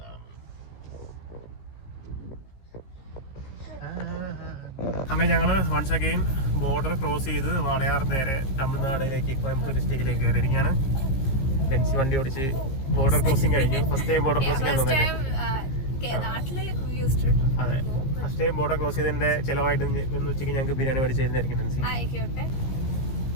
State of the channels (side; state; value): right; late; 15 ms